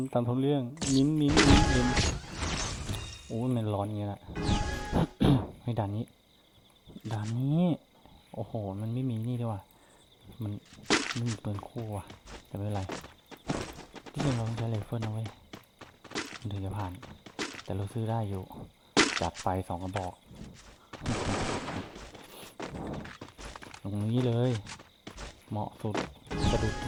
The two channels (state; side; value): identical; both; correlation 1.00